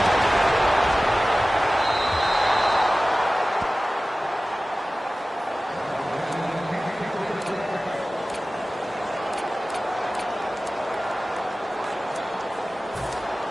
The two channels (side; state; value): both; normal; correlation 0.97